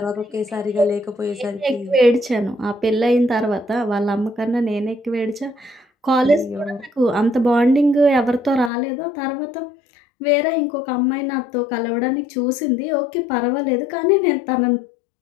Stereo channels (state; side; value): drops out; right; at 8.7 s